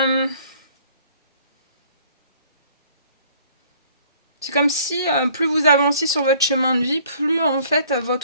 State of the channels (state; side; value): inverted; both; correlation -0.56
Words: C'est comme si plus vous avanciez sur votre chemin de vie, plus en fait